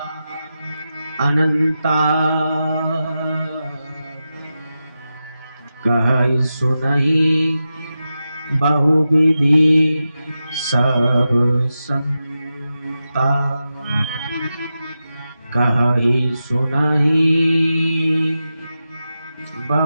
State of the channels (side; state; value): both; inverted; correlation -0.91